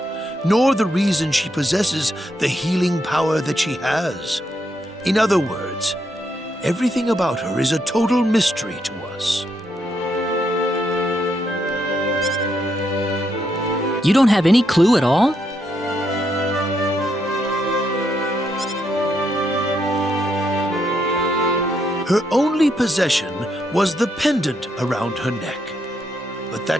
nor the reason she possesses the healing power that she has. In other words, everything about her is a total mystery to us. You don't have any clue at all? Her only possession was the pendant around her neck. But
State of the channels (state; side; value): normal; both; correlation 0.78